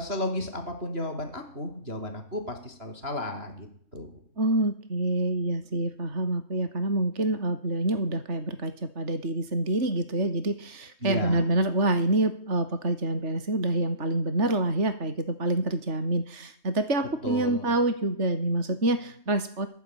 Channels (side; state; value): left; late; 3.4 ms